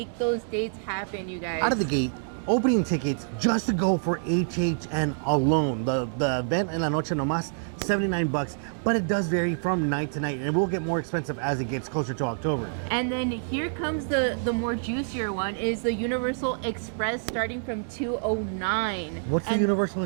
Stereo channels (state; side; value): silent; left; digital silence